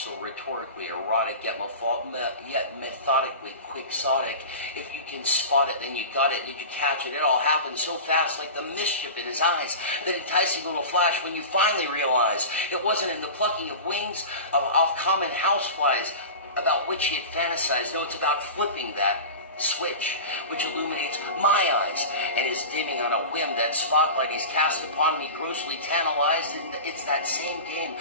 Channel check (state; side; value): inverted; both; correlation -0.30